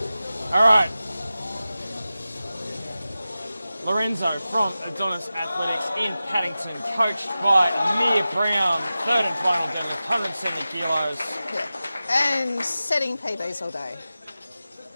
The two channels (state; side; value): inverted; both; correlation -0.95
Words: All right. Lorenzo from Adonis Athletics in Paddington, coached by Amir Brown, third and final deadlift, 170 kilos. Yeah. And setting PBs all day.